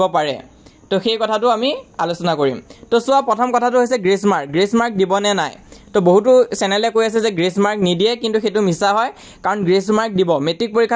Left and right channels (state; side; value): identical; both; correlation 1.00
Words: পাৰে তো সেই কথাটো আমি আলোচনা কৰিম তো সোৱা প্ৰথম কথাটো হৈছে গ্ৰেস মাৰ্ক দিবনে নাই তো বহুতো চেনেলে কৈ আছে যে গ্ৰেস মাৰ্ক নিদিয়ে কিন্তু হেতু মিছা হয় কাৰণ গ্ৰেস মাৰ্ক দিব মেট্ৰিক